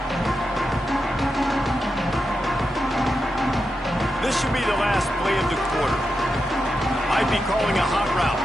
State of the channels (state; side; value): normal; both; correlation 0.88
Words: This should be the last play of the quarter. Might be calling a hot route.